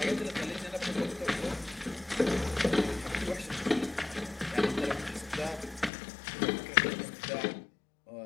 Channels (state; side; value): drops out; right; at 5.9 s